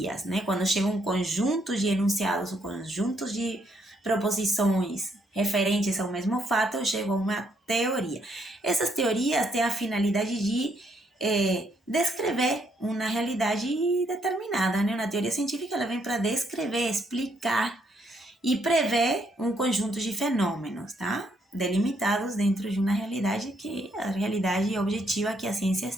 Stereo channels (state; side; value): normal; both; correlation 0.73